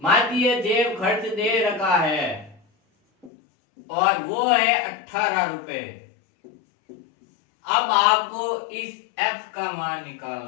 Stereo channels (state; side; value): drops out; right; at 3.3 s